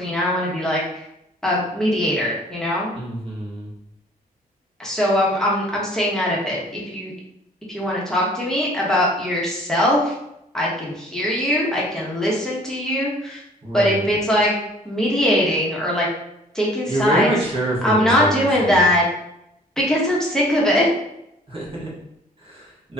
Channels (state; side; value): normal; both; correlation 0.53